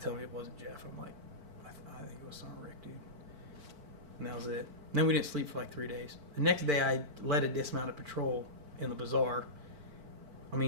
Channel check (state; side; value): late; left; 4.5 ms